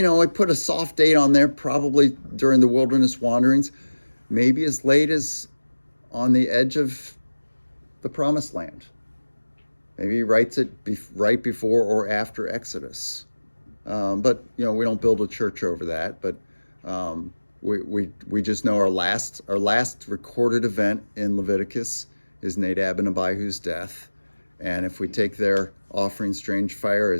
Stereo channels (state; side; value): inverted; both; correlation -1.00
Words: put a soft date on there, probably during the wilderness wanderings, maybe as late as on the edge of the promised land. Maybe he writes it right before or after Exodus. But we don't build a church over that. But we just know our last recorded event in Leviticus is Nadab and Abihu's death. And if we take their offering strange fire